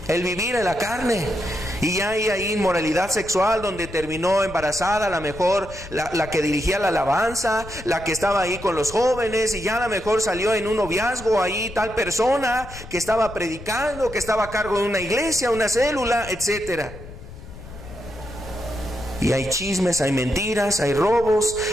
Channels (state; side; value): noise; left; rumble, 15 dB below the sound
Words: el vivir en la carne. Y ya hay ahí inmoralidad sexual, donde terminó embarazada a lo mejor la que dirigía la alabanza, la que estaba ahí con los jóvenes, y ya a lo mejor salió en un noviazgo ahí tal persona que estaba predicando, que estaba a cargo de una iglesia, una célula, etcétera. Y hay chismes, hay mentiras, hay robos,